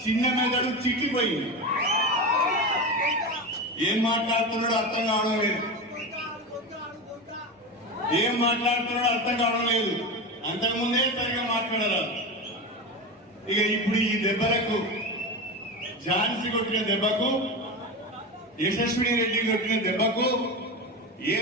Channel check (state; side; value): normal; both; correlation 0.22